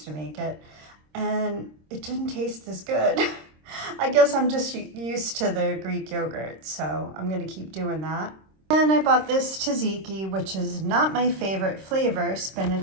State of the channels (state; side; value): late; left; 26 ms